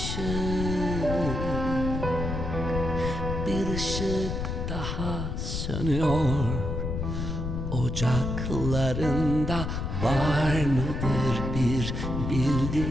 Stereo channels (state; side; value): noise; left; rumble, 3 dB below the sound